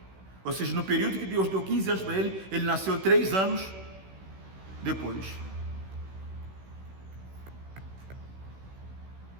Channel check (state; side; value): late; left; 16 ms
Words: Ou seja, no período que Deus deu 15 anos para ele, ele nasceu 3 anos depois.